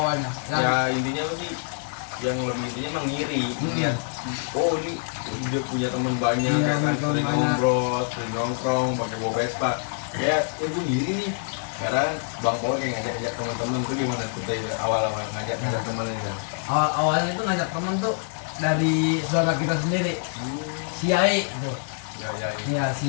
Ya intinya sih yang lebih intinya emang ngiri. Lihat, oh ini dia punya teman banyak, Iya, ya kan teman sering banyak. ngobrol, sering nongkrong, pakai bawa Vespa. Ya, gue ngiri nih. Sekarang Bang Paul kayak ngajak-ngajak teman-teman tuh gimana tuh dari awal-awal ngajak-ngajak teman ini kan? Awalnya itu ngajak temen tuh dari saudara kita sendiri, si Yai tuh. Ya, Iya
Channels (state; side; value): silent; right; 56 dB below the other